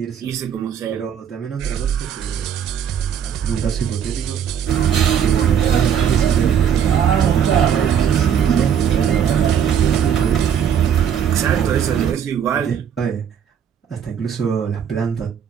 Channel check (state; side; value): quieter; left; 8.4 dB